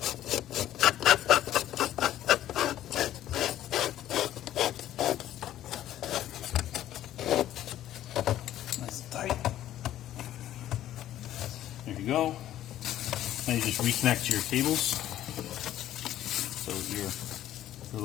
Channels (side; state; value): right; quieter; 12.7 dB